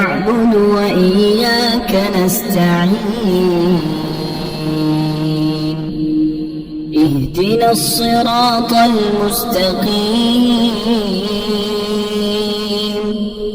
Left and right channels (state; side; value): identical; both; correlation 1.00